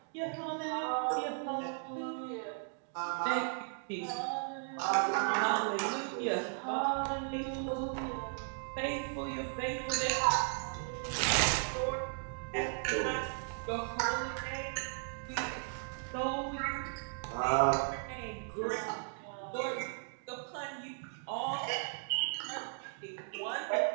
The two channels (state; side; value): silent; left; 54 dB below the other